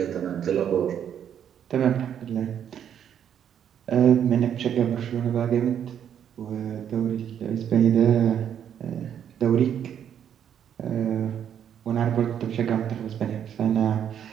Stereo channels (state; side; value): quieter; left; 9.1 dB